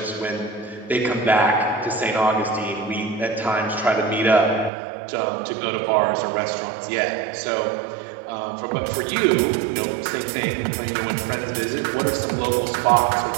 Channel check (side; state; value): left; drops out; at 4.7 s